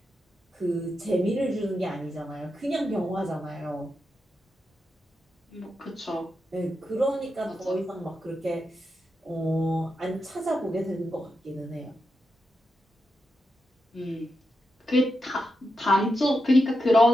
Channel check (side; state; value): both; normal; correlation 0.87